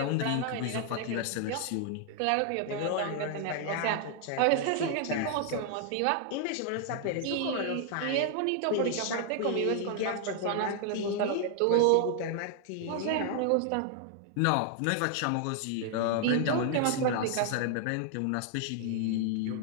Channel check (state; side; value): different; both; correlation 0.00